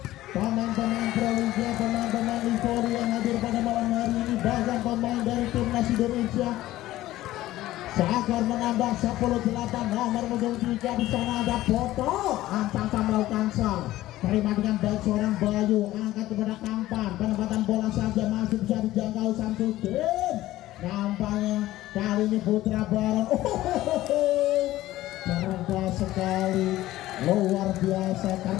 Pemain-pemain Proliga, pemain-pemain Livori yang hadir pada malam hari ini, bahkan pemain dari timnas Indonesia. Seakan menambah 10-8. Nomor punggung 3 di sana ada Boto. Ancang melakukan sal. Terima dengan baik seorang Bayu, angkat kepada Kampang. Penempatan bola saja masih bisa dijangkau Samsudin. Nampaknya kali ini Putra Baron. Cerdas sekali, luar biasa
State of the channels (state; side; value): quieter; right; 15.6 dB